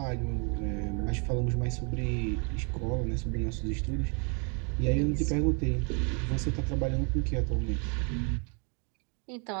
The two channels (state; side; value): quieter; left; 36.8 dB